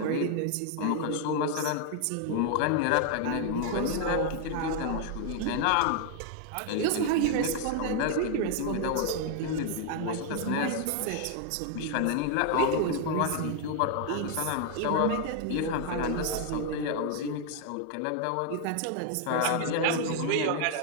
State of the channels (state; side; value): different; both; correlation 0.00